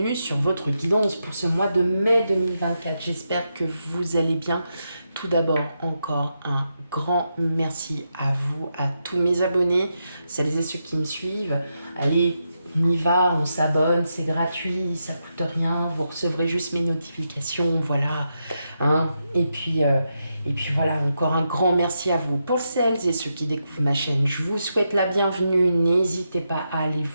sur votre guidance pour ce mois de mai 2024. J'espère que vous allez bien. Tout d'abord, encore un grand merci à vous, à tous mes abonnés, celles et ceux qui me suivent. Allez, on y va, on s'abonne, c'est gratuit, ça coûte rien, vous recevrez juste mes notifications, voilà. Hein. Et puis voilà, encore un grand merci à vous. Pour celles et ceux qui découvrent ma chaîne, je vous souhaite la bienvenue. N'hésitez pas à aller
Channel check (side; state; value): both; inverted; correlation -0.84